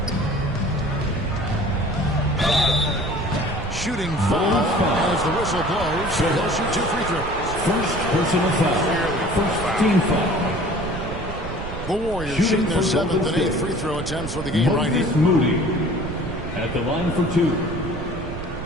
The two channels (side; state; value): right; noise; rumble, 9 dB below the sound